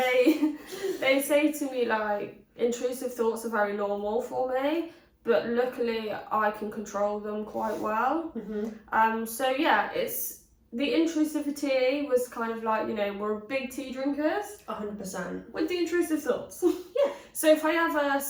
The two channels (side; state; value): both; identical; correlation 1.00